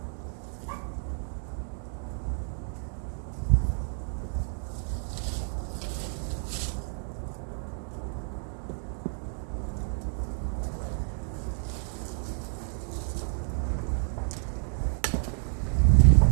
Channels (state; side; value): silent; left; 56 dB below the other